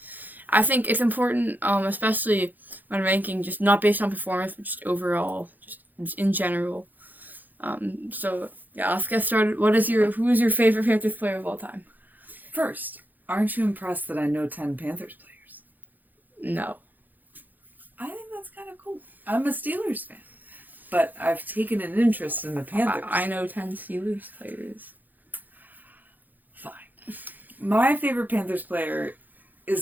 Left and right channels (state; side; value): late; left; 0.085 ms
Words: I think it's important, especially when ranking, just not based on performance, but just overall, just in general. Let's get started. Who is your favorite Panthers player of all time? First, aren't you impressed that I know 10 Panthers players? No. I think that's kind of cool. I'm a Steelers fan, but I've taken an interest in the Panthers. I know 10 Steelers players. Fine. My favorite Panthers player